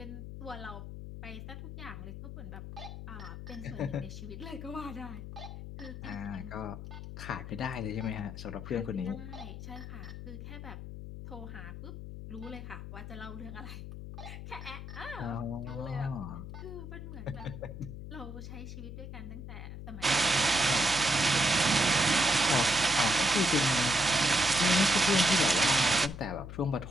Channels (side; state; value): left; noise; hum, 10 dB below the sound